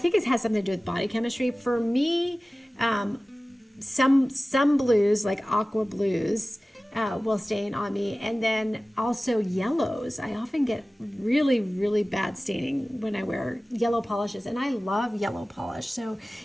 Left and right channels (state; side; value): normal; both; correlation 0.97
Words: it has something to do with body chemistry. For me, some blues, like aqua blues, will stain on me, and then also yellows. I often get really, really bad staining when I wear yellow polishes, and I love yellow polish, so